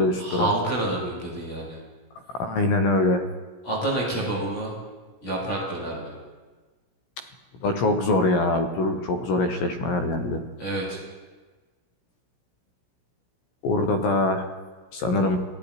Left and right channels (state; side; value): late; right; 17 ms